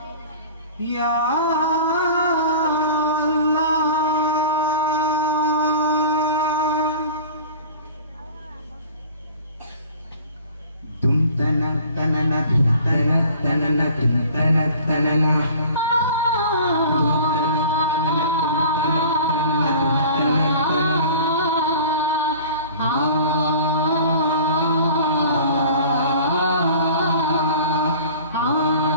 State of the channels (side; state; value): both; inverted; correlation -0.44